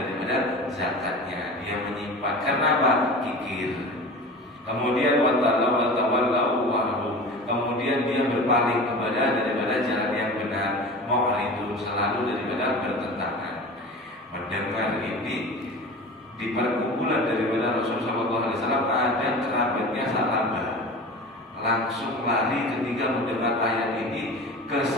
zakatnya, dia menyimpan. Kenapa? Kikir. Kemudian watawallahu wahum, kemudian dia berpaling kepada daripada jalan yang benar, mu'ridun, selalu daripada bertentangan. Mendengar ini, di perkumpulan daripada Rasulullah SAW ada kerabatnya Sa'labah, langsung lari ketika mendengar ayat ini ke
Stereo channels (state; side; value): normal; both; correlation 0.35